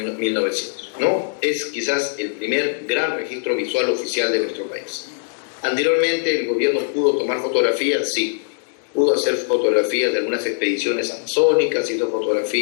¿no? Es quizás el primer gran registro visual oficial de nuestro país. Anteriormente el gobierno pudo tomar fotografías, sí, pudo hacer fotografías de algunas expediciones amazónicas, hizo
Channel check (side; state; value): right; silent; digital silence